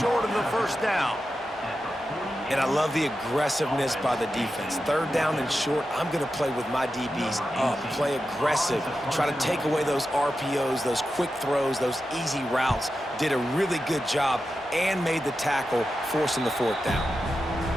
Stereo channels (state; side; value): normal; both; correlation 0.90